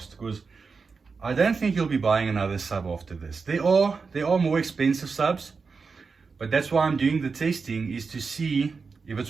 because I don't think you'll be buying another sub after this. There are more expensive subs, but that's why I'm doing the testing, is to see if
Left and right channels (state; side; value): quieter; left; 4.9 dB